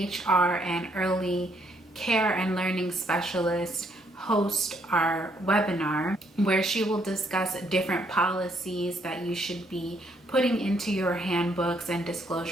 and early care and learning specialist host our webinar where she will discuss different policies that you should be putting into your handbooks and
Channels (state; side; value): normal; both; correlation 0.71